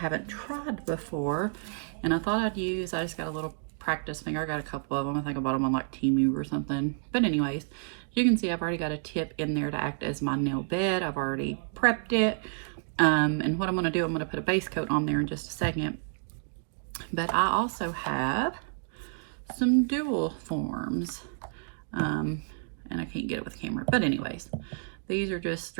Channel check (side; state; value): left; silent; digital silence